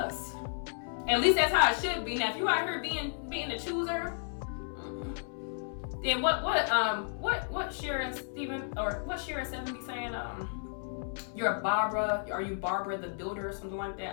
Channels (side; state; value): right; silent; 56 dB below the other